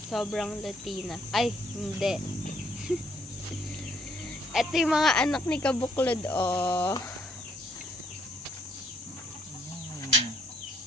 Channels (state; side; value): normal; both; correlation 0.68